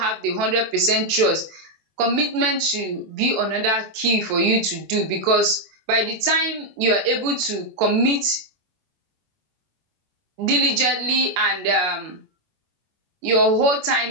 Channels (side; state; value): left; late; 24 ms